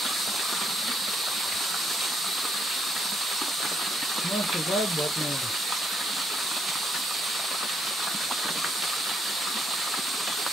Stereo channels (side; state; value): both; normal; correlation 0.74